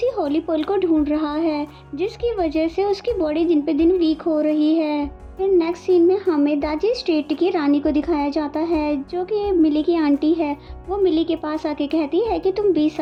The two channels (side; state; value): both; identical; correlation 1.00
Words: होली पर्ल को ढूंढ रहा है, जिसकी वजह से उसकी बॉडी दिन पे दिन वीक हो रही है। फिर नेक्स्ट सीन में हमें दाजी स्टेट की रानी को दिखाया जाता है जो कि मिली की आंटी है। वो मिली के पास आके कहती है कि तुम 20